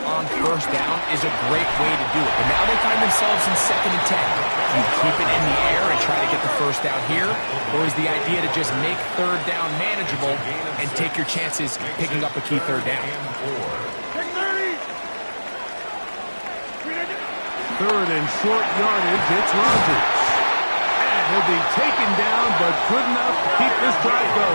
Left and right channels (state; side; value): inverted; both; correlation -1.00